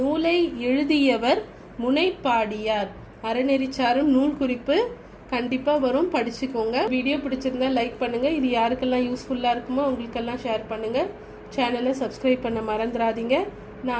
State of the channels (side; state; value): both; identical; correlation 1.00